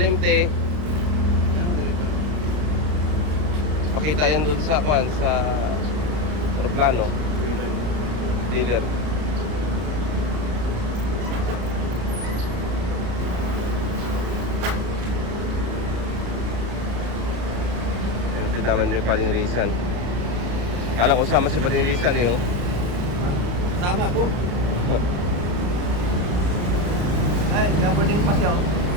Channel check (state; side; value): late; left; 34 ms